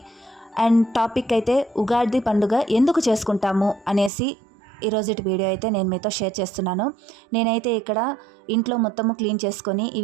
అండ్ టాపిక్ అయితే ఉగాది పండుగ ఎందుకు చేసుకుంటాము అనేసి ఈరోజు వీడియో అయితే నేను మీతో షేర్ చేస్తున్నాను. నేనైతే ఇక్కడ ఇంట్లో మొత్తము క్లీన్ చేసుకొని ఈ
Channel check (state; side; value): drops out; left; at 4.1 s